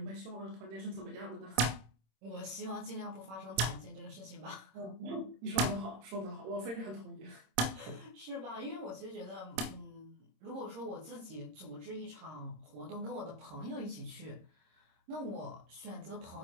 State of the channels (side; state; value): left; late; 26 ms